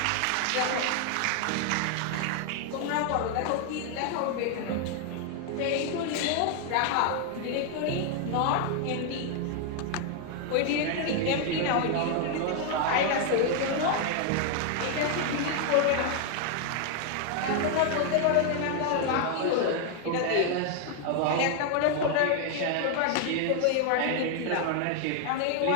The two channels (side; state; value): both; different; correlation 0.00